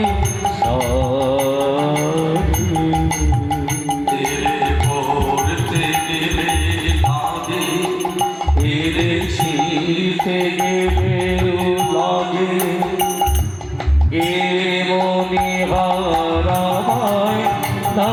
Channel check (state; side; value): identical; both; correlation 1.00